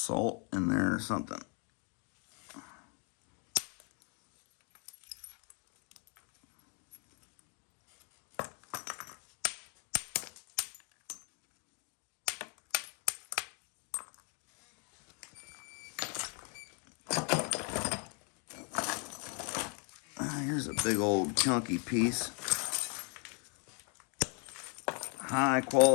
in there or something. Here's a big old chunky piece. High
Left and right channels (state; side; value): quieter; right; 37.4 dB